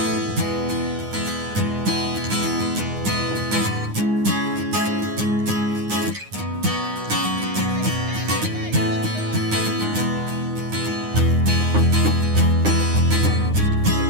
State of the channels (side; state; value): left; late; 9.7 ms